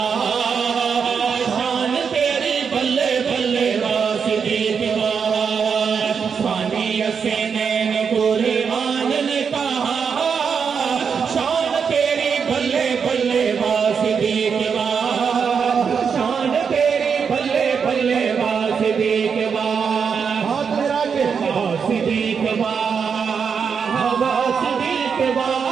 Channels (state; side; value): quieter; left; 6.4 dB